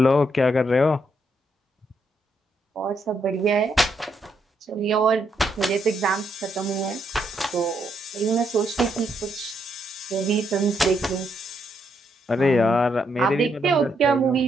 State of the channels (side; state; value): both; normal; correlation 0.77